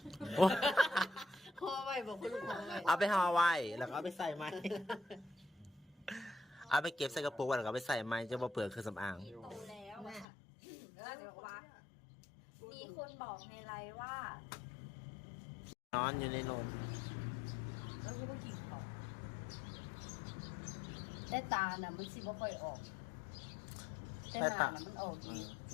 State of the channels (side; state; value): right; drops out; at 10.2 s